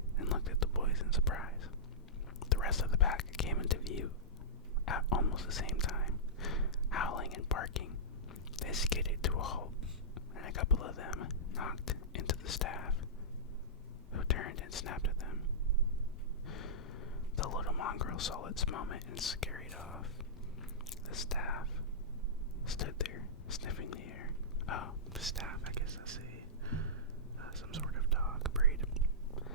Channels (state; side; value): normal; both; correlation -0.16